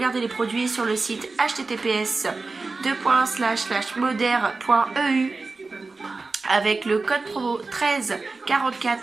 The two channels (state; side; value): quieter; left; 3.8 dB